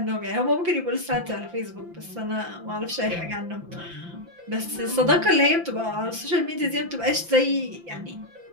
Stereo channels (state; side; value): late; left; 5.8 ms